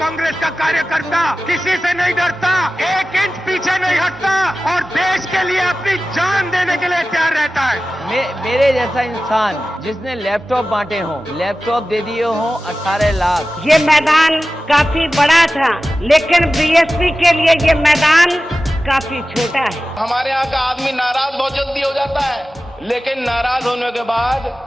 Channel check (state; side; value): normal; both; correlation 0.95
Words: का कार्यकर्ता किसी से नहीं डरता, एक इंच पीछे नहीं हटता और देश के लिए अपनी जान देने के लिए तैयार रहता है। मेरे जैसा इंसान जिसने लैपटॉप बांटे हों, लैपटॉप दे दिए हों 18 लाख। ये मैदान काफी बड़ा था, लेकिन बीएसपी के लिए ये मैदान काफी छोटा है। हमारे यहाँ का आदमी नाराज बहुत जल्दी हो जाता है, लेकिन नाराज होने के बाद